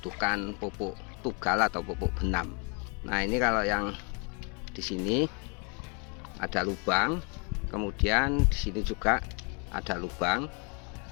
pupuk tugal atau pupuk benam. Nah, ini kalau yang di sini ada lubang, kemudian di sini juga ada lubang,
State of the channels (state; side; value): quieter; right; 34.8 dB